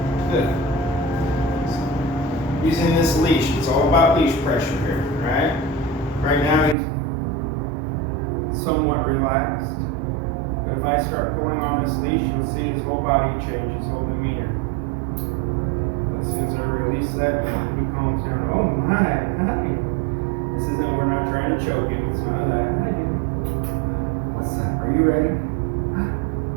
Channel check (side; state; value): left; drops out; at 6.8 s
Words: Good. So, using this leash, it's all about leash pressure here, right? Right now he's somewhat relaxed. But if I start pulling on this leash, you'll see his whole body change, his whole demeanor. As soon as I release that, he calms down. Oh my, hi. This isn't, we're not trying to choke him, it's none of that. Hi, dude. What's up? Are you ready?